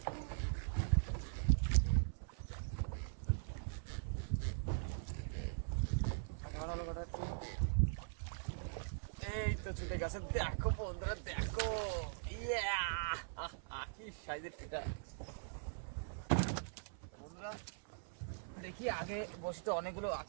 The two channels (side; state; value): left; silent; 50 dB below the other